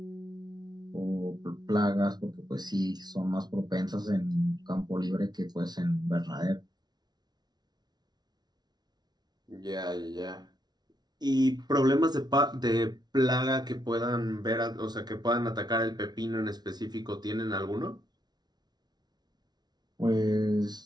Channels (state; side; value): late; left; 0.19 ms